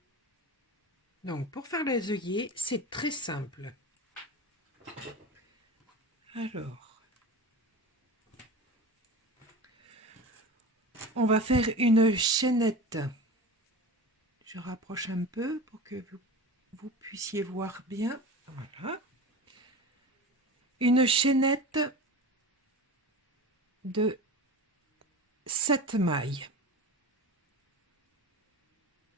Donc pour faire les œillets, c'est très simple. Alors, on va faire une chaînette. Je rapproche un peu pour que vous puissiez voir bien. Voilà. Une chaînette de 7 mailles.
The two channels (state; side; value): normal; both; correlation 0.31